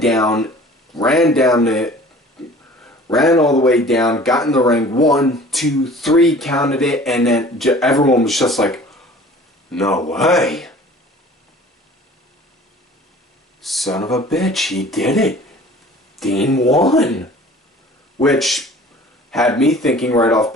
all the way down, got in the ring, 1, 2, 3, counted it, and then everyone was just like, "No way. Son of a bitch, he did it. Dean won." Which had me thinking right off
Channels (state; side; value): normal; both; correlation 0.47